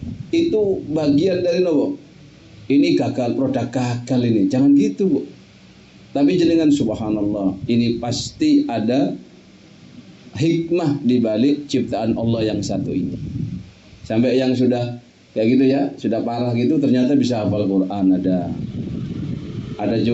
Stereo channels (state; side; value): identical; both; correlation 1.00